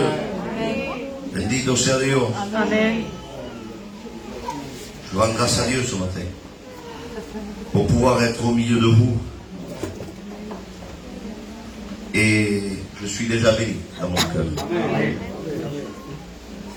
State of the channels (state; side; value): identical; both; correlation 1.00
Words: Bendito sea Dios. Amen. Je rends grâce à Dieu ce matin pour pouvoir être au milieu de vous. Et je suis déjà béni dans mon cœur.